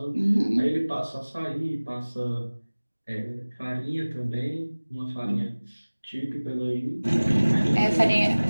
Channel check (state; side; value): inverted; both; correlation -1.00